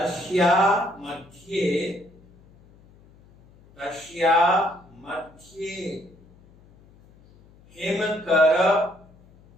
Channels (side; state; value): left; noise; hum, 27 dB below the sound